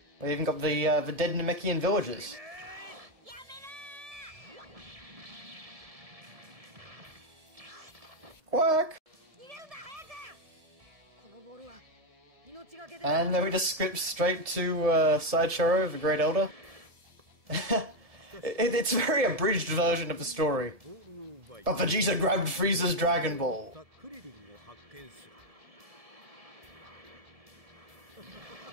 We even got the dead Namekian villagers. Quack! And then we just skip straight to Sideshow, the Great Elder. It's a very abridged version of the story. But Vegeta grabbed Frieza's Dragon Ball.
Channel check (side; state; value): left; late; 1.7 ms